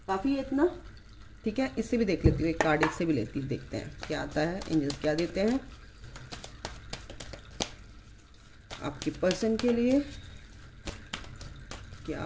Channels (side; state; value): both; identical; correlation 1.00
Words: है इतना, ठीक है? इससे भी देख लेती हूँ, एक कार्ड इससे भी लेती हूँ, देखते हैं क्या आता है, एंजल्स क्या देते हैं आपके पर्सन के लिए,